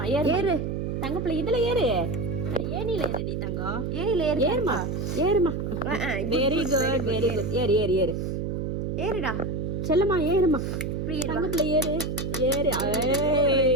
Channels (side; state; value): right; noise; hum, 2 dB below the sound